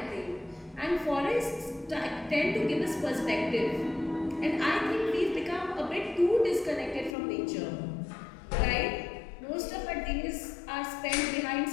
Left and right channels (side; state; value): right; drops out; at 7.2 s